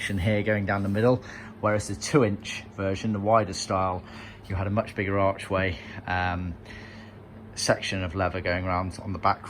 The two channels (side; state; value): both; identical; correlation 1.00